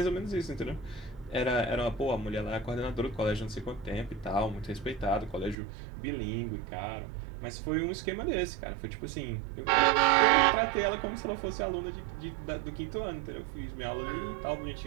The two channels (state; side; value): drops out; left; at 5.6 s